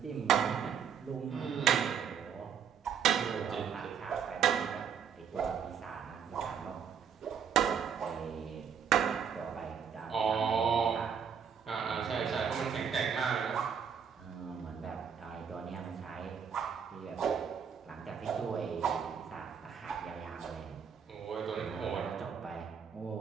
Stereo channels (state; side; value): quieter; left; 7.5 dB